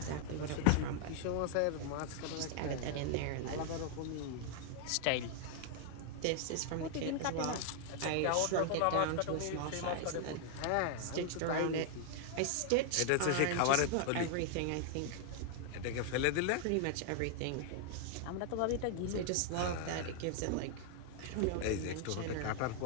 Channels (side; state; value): both; different; correlation 0.00